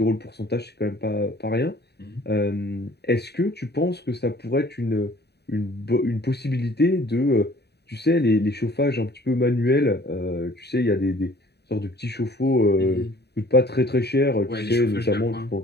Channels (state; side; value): late; right; 0.48 ms